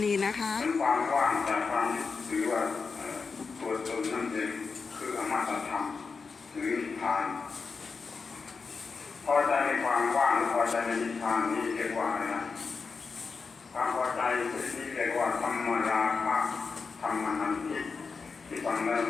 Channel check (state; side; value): quieter; right; 4.9 dB